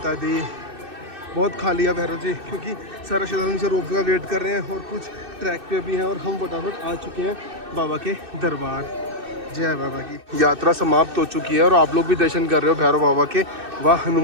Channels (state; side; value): late; left; 2.6 ms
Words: दी। बहुत खाली है भैरव जी, क्योंकि सारा श्रद्धालु से रोप का वेट कर रहे हैं, और कुछ ट्रैक पे भी हैं, और हम फटाफट आ चुके हैं बाबा के दरबार। जय बाबा की। यात्रा समाप्त हो चुकी है, और आप लोग भी दर्शन कर रहे हो भैरव बाबा के व